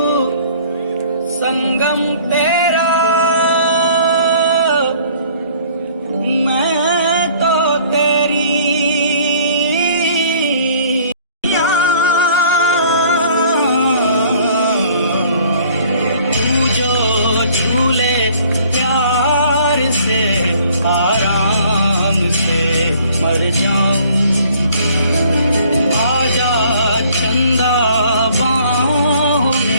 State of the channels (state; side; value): inverted; both; correlation -0.56